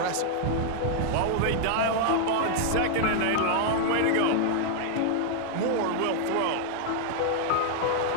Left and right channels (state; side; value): different; both; correlation -0.01